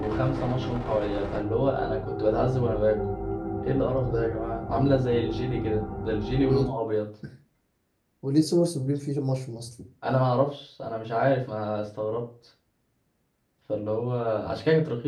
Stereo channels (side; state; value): both; identical; correlation 1.00